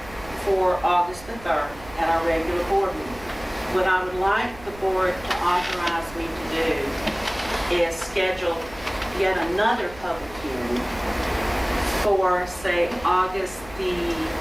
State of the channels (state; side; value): noise; right; rumble, 19 dB below the sound